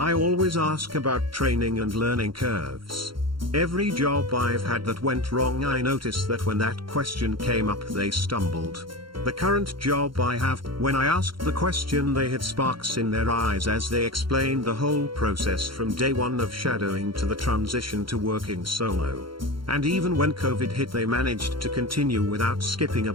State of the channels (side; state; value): left; late; 0.73 ms